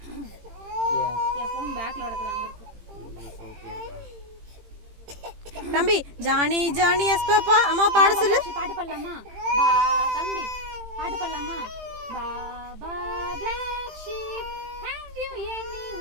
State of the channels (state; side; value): late; left; 18 ms